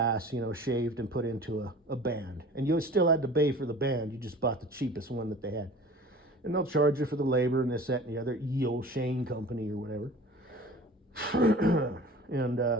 you know, shaved and put into a band. And you still had to pay for the band. You just bought the cheapest one that they had. And they'll charge you for the labor and this, that, and the other. Yale Shane Company or whatever. And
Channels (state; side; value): normal; both; correlation 0.42